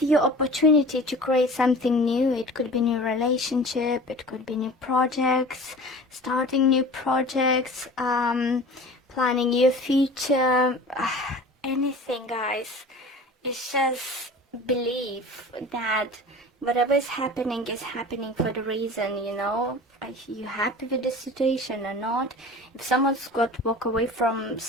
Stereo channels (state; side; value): normal; both; correlation 0.39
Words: you opportunity to create something new. It could be new relationship, it could be new projects, starting new projects, planning your future, anything, guys. It's just believe that whatever is happening for the reason, you know. Are you happy with the situation or not? If someone's got to walk away from